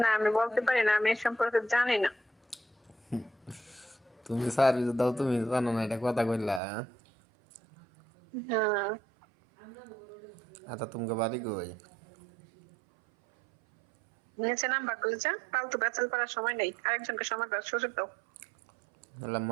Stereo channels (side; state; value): left; drops out; at 6.6 s